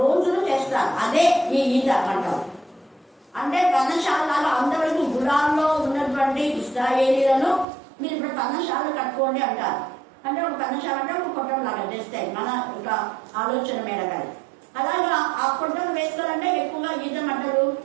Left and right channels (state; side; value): drops out; left; at 7.7 s